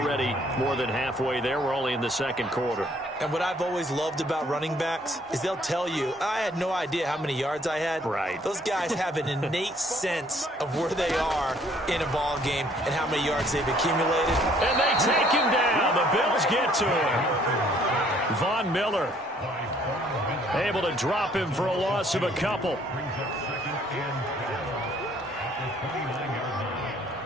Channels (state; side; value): normal; both; correlation 0.62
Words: more than halfway there. We're only in the 2nd quarter. And what I've always loved about running backs is they'll tell you, I had no idea how many yards I had. Right. Those guys have an innate sense of where they are in a ball game and how many yards they've accumulated. And they take him down. The Bills get to him. Von Miller able to drop him for a loss of a couple.